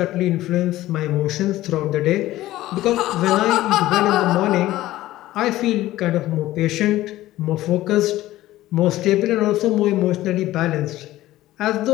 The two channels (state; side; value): quieter; right; 15.7 dB